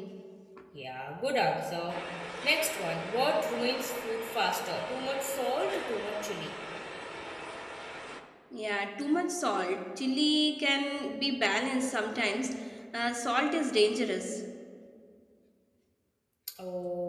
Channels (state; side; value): identical; both; correlation 1.00